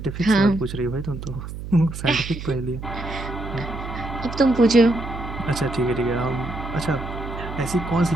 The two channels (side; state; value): right; noise; hum, 9 dB below the sound